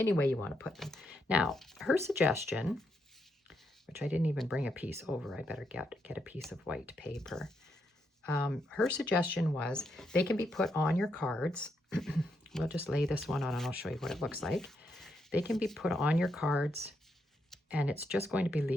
way you want to put them. Now, her suggestion, which I didn't even bring a piece over, I better get a piece of white paper. Her suggestion was they can be put on your cards. We'll just lay this one on and I'll show you what it looks like. They can be put on your cards and it's just going to be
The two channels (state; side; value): normal; both; correlation 0.80